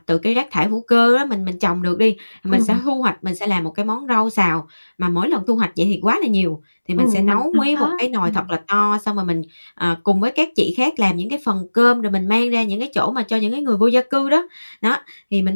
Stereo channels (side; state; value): both; inverted; correlation -1.00